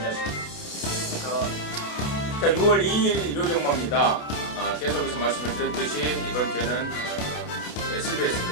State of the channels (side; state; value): right; late; 28 ms